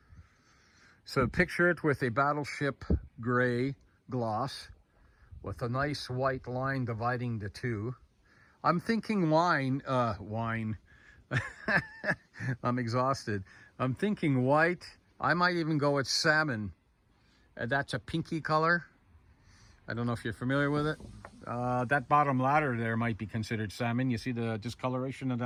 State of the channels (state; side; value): identical; both; correlation 1.00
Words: So picture it with a Battleship gray gloss with a nice white line dividing the two. I'm thinking wine. I'm exhausted. I'm thinking white. I might even go with salmon. That's a pinky color. I don't know if you're familiar with it. That bottom ladder there might be considered salmon. You see the discoloration of